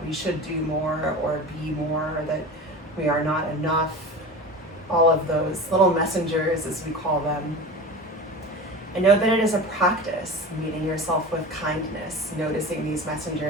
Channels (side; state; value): both; normal; correlation 0.32